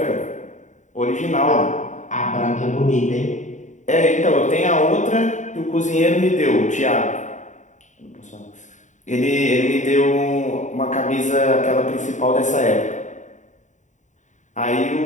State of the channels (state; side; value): late; right; 0.35 ms